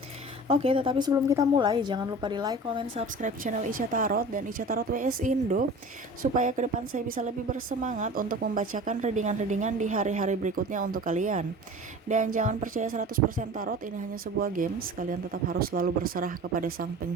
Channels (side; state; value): both; normal; correlation 0.39